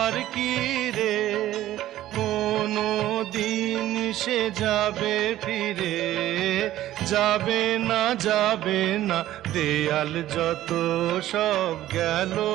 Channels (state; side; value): quieter; left; 14.0 dB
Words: কি রে কোনো দিন সে যাবে ফিরে। যাবে না যাবে না দেয়াল যত সব গেল